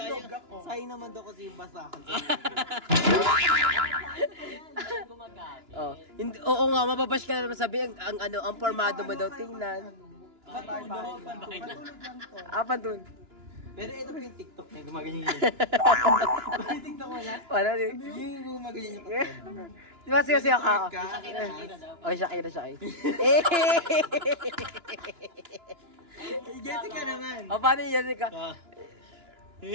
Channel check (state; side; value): late; left; 2.9 ms